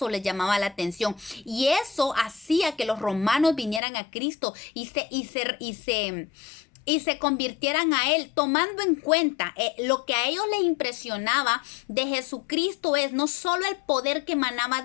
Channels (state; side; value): drops out; right; at 3.8 s